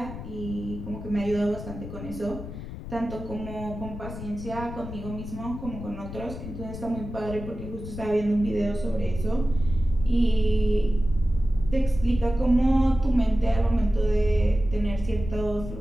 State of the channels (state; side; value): noise; left; rumble, 10 dB below the sound